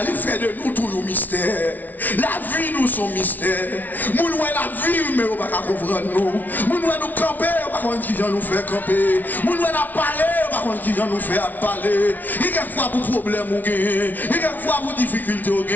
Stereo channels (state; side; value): late; right; 0.080 ms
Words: il fait de nous tout le mystère. La vie nous son mystère. Nous nous la vie, mais on ne peut pas comprendre nous. Nous nous camper, on ne peut pas comprendre qui vient nous faire camper. Nous nous parler, on ne peut pas comprendre qui vient nous faire parler. Il y a quelquefois pour problème on gagne. Il y a quelquefois pour difficulté on